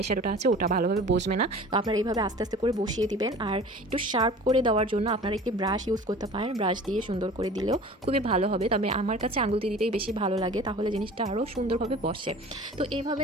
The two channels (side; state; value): both; normal; correlation 0.42